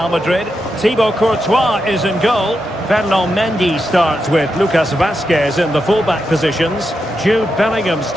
Madrid. Thibaut Courtois is in goal. Ferland Mendy starts with Lucas Vazquez in the fullback positions. Jude Bellingham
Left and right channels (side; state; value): both; normal; correlation 0.86